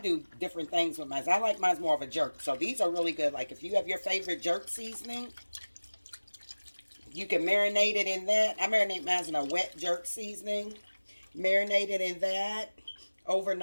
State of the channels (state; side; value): inverted; both; correlation -1.00